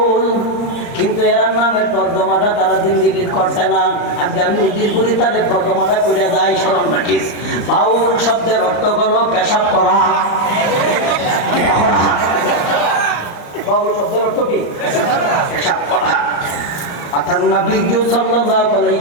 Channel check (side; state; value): right; late; 34 ms